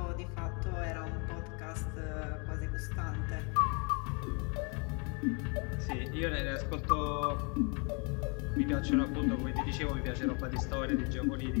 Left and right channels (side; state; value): right; quieter; 34.6 dB